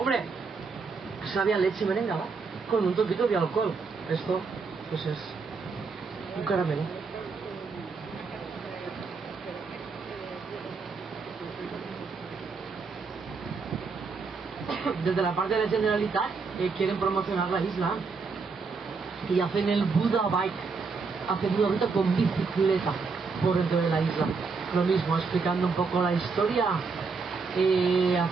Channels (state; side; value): quieter; left; 4.7 dB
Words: sabe a leche merengada con un toquito de alcohol. Esto, pues es un caramelo. desde la parte de la Generalitat quieren promocionar la isla y hacen el Buda Bike, hacen una ruta con bicicleta por dentro de la isla. Lo mismo, explicando un poco la historia,